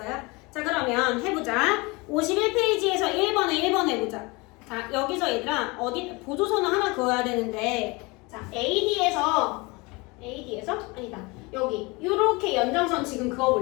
자, 그러면 해보자. 51페이지에서 1번에 해보자. 자, 여기서 얘들아 어디 보조선을 하나 그어야 되는데, 자, AD에서 아니다, 여기 요렇게 연장선 지금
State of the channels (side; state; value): right; quieter; 25.7 dB